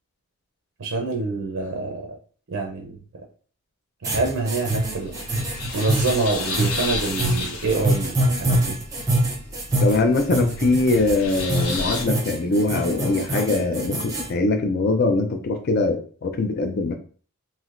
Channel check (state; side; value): normal; both; correlation 0.42